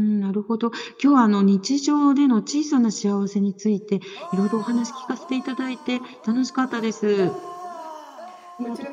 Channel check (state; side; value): identical; both; correlation 1.00